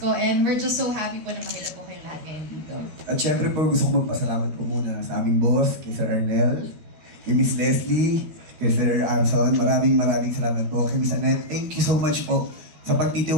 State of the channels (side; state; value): left; late; 12 ms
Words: and we're just so happy po na makita po kayo lahat ngayon dito. At syempre po, gusto ko magpasalamat po muna sa aming boss, kay Sir Arnel, kay Miss Leslie, kay Sir Arson. Maraming salamat po. Kay Miss Annette, thank you so much po sa